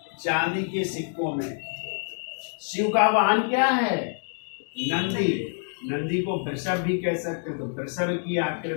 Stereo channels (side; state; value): right; silent; 60 dB below the other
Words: सिक्कों में शिव का वाहन क्या है? नंदी। नंदी को वृषभ भी कह सकते हैं, तो वृषभ की